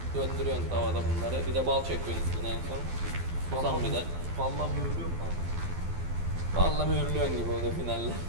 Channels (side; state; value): left; late; 12 ms